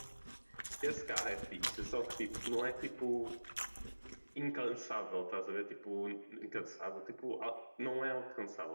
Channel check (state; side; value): inverted; both; correlation -1.00